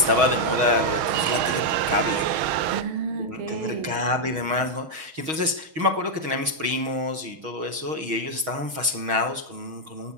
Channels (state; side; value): late; left; 6.3 ms